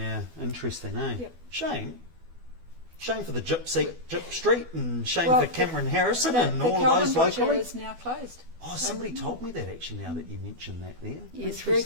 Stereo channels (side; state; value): left; late; 12 ms